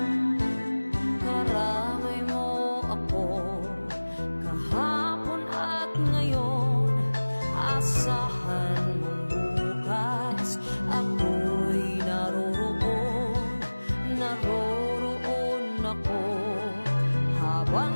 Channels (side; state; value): both; inverted; correlation -1.00